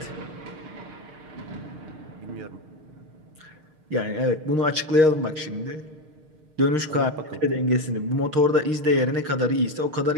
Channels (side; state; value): left; late; 6.5 ms